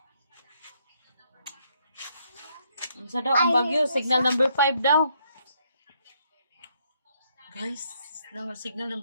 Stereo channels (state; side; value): inverted; both; correlation -0.72